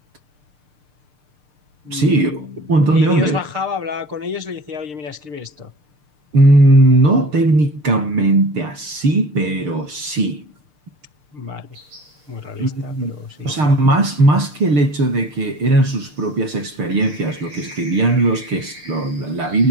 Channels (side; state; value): left; late; 6.7 ms